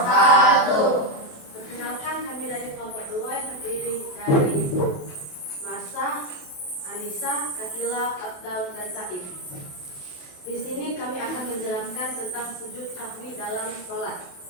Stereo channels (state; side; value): late; right; 28 ms